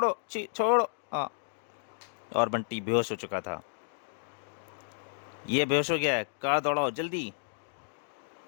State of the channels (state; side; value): silent; right; digital silence